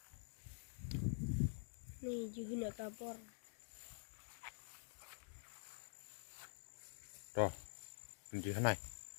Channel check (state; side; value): silent; right; digital silence